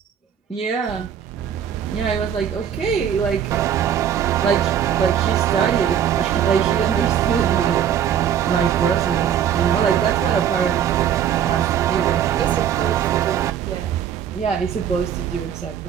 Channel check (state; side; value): quieter; left; 9.0 dB